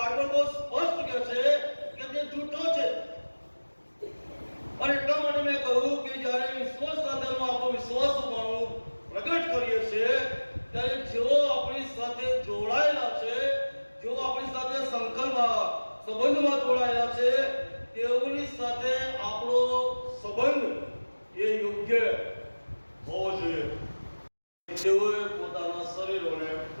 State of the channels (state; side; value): inverted; both; correlation -1.00